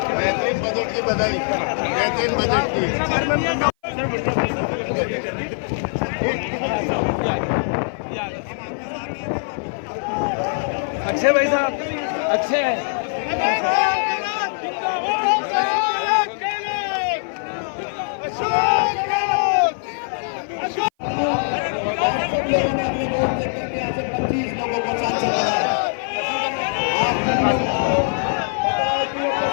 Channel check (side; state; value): right; silent; 56 dB below the other